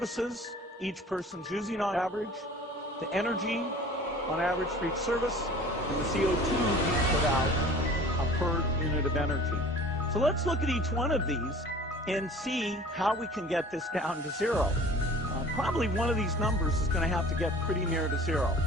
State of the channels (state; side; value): normal; both; correlation 0.45